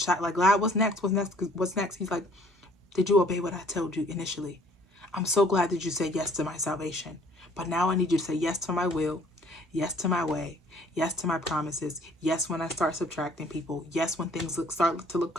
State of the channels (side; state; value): both; normal; correlation 0.57